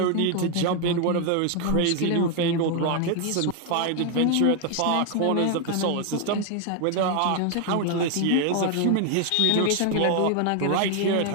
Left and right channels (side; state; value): both; different; correlation 0.00